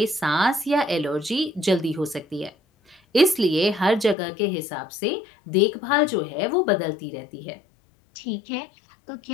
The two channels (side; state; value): right; drops out; at 4.2 s